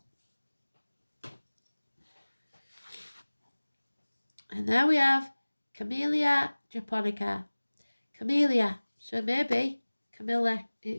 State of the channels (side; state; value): both; inverted; correlation -1.00